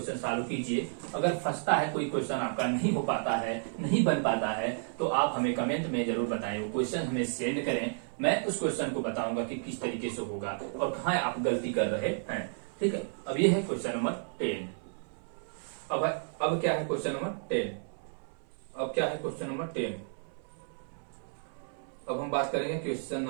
सॉल्व कीजिए। अगर फंसता है कोई क्वेश्चन आपका नहीं हो पाता है, नहीं बन पाता है, तो आप हमें कमेंट में जरूर बताएं, वो क्वेश्चन हमें सेंड करें। मैं उस क्वेश्चन को बताऊंगा कि किस तरीके से होगा और कहाँ आप गलती कर रहे हैं, ठीक है। अब ये है क्वेश्चन नंबर 10। अब क्या है क्वेश्चन नंबर 10। अब क्या है क्वेश्चन नंबर 10। अब हम बात करेंगे क्वेश्चन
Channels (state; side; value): silent; left; 56 dB below the other